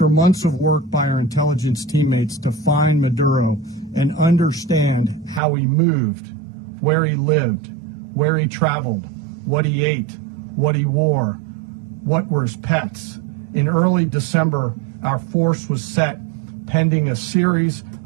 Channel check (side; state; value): left; drops out; at 5.4 s